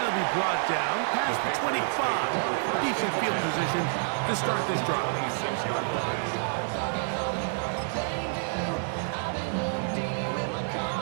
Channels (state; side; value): silent; left; digital silence